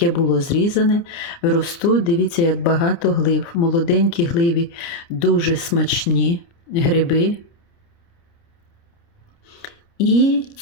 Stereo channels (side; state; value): right; late; 29 ms